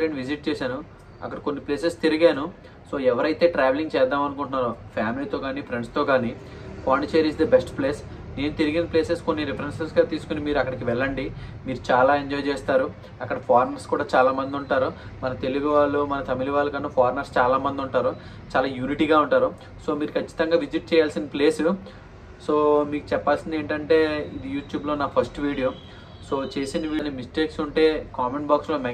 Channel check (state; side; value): identical; both; correlation 1.00